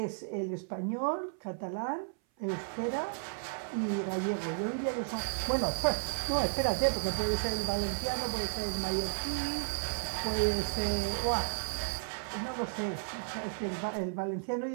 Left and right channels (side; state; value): left; silent; 55 dB below the other